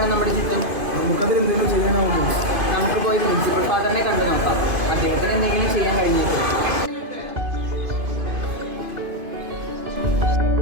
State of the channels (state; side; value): late; left; 2.5 ms